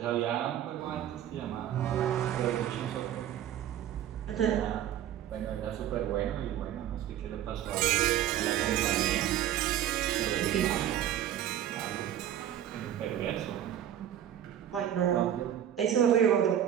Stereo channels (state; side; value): quieter; left; 10.9 dB